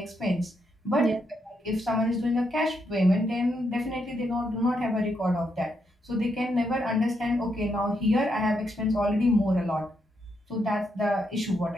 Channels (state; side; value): normal; both; correlation 0.80